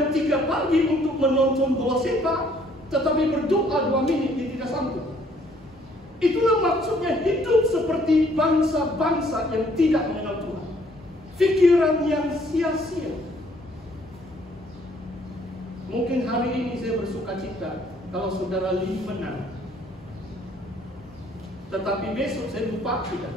3 pagi untuk menonton bola sepak, tetapi berdoa 2 menit dia tidak sanggup. Itulah maksudnya hidup seperti bangsa-bangsa yang tidak mengenal Tuhan. Pikiran yang sia-sia. Mungkin hari ini saya bersuka cita kalau saudara Lee menang. Tetapi besok saya lupa tidak.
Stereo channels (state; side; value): normal; both; correlation 0.63